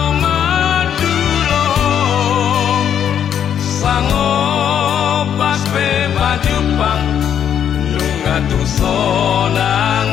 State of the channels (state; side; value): quieter; right; 9.0 dB